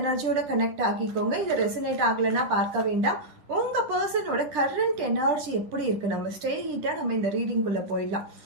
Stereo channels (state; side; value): late; left; 10 ms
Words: எனர்ஜியோட கனெக்ட் ஆகிக்கோங்க. இது ரெசனேட் ஆகலைன்னா பார்க்க வேண்டாம். உங்க பர்சனோட கரண்ட் எனர்ஜி எப்படி இருக்கு, நம்ம ஸ்ட்ரெயிட்டா நம்ம இந்த ரீடிங்குள்ள போயிடலாம்.